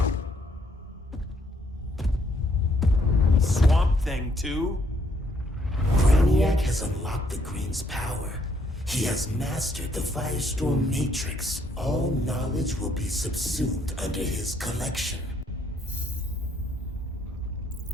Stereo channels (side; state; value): both; normal; correlation 0.70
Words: Swamp Thing too? Brainiac has unlocked the Green's power. He has mastered the Firestorm Matrix. All knowledge will be subsumed under his collection.